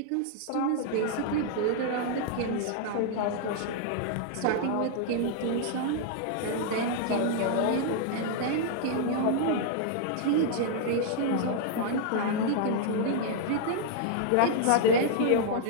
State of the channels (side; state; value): both; different; correlation -0.01